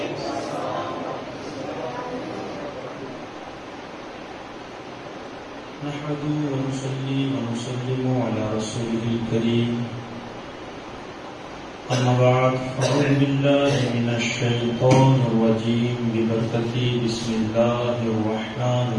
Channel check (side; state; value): both; identical; correlation 1.00